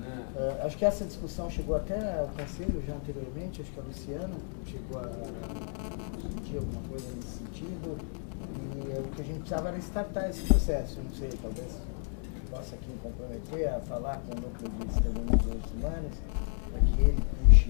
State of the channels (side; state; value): right; silent; 56 dB below the other